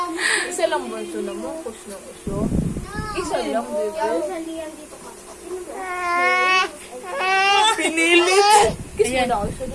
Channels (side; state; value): both; identical; correlation 1.00